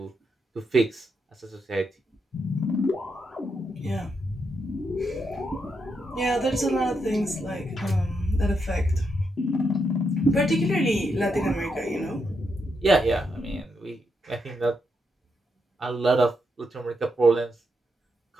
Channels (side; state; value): both; normal; correlation 0.81